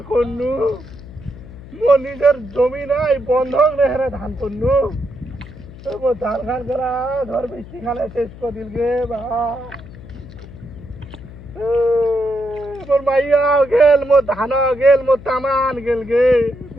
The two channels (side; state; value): left; noise; hum, 17 dB below the sound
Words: করনু, মোর নিজের জমি নাই বন্ধক নেহারে ধান করনু। মোর ধান খান করা ধর বৃষ্টি খালে শেষ করে দিল গে বা। মোর মাইয়াও গেল, মোর ধানও গেল, মোর তামান গেল গে।